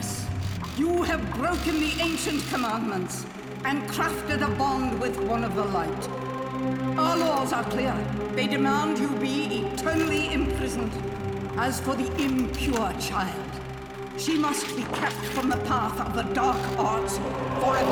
you have broken the ancient commandments and crafted a bond with one of the light. Our laws are clear. They demand you be eternally imprisoned. As for the impure child, she must be kept from the path of the dark arts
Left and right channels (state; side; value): identical; both; correlation 1.00